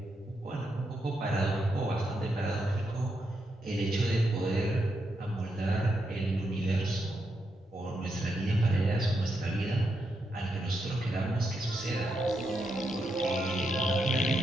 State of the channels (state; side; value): normal; both; correlation 0.82